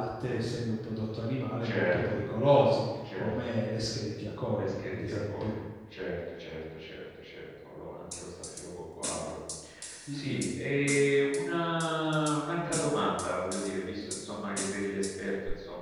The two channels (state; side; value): identical; both; correlation 1.00